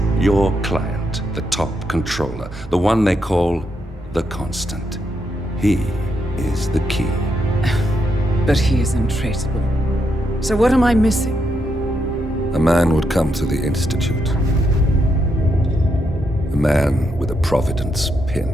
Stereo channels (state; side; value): normal; both; correlation 0.80